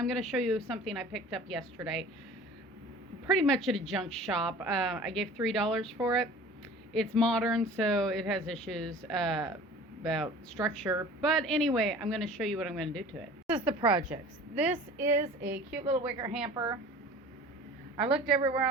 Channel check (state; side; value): normal; both; correlation 0.44